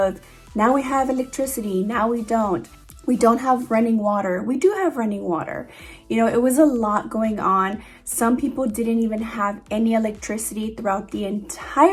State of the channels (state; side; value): identical; both; correlation 1.00